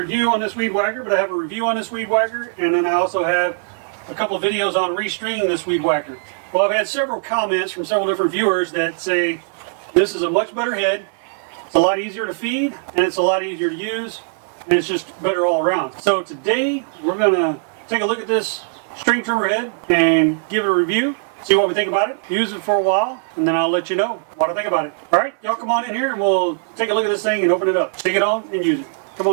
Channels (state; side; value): silent; left; digital silence